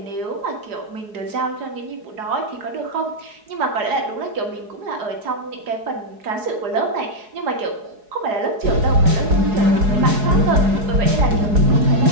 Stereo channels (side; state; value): left; late; 4.8 ms